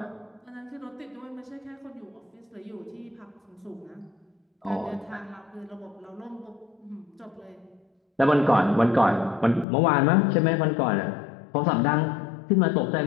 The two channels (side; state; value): right; drops out; at 9.7 s